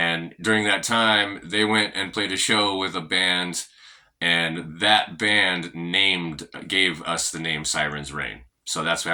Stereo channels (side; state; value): both; identical; correlation 1.00